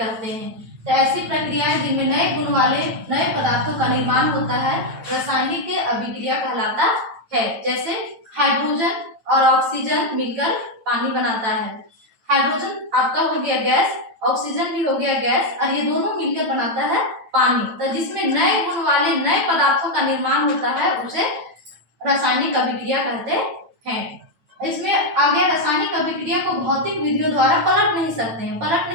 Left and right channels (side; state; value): left; late; 9.0 ms